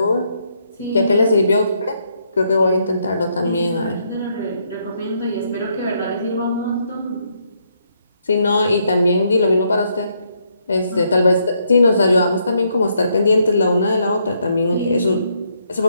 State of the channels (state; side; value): inverted; both; correlation -0.74